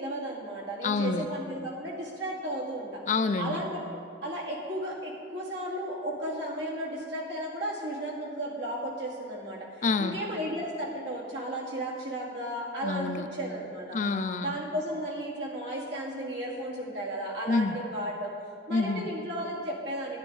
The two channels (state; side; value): normal; both; correlation 0.26